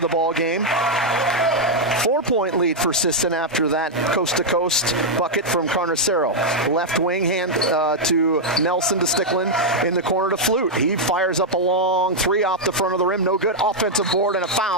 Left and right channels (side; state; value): both; normal; correlation -0.03